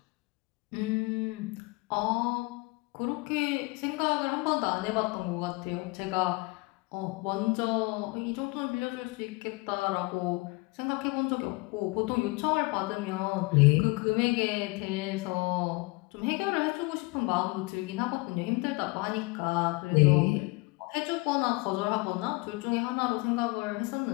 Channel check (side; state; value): right; quieter; 25.4 dB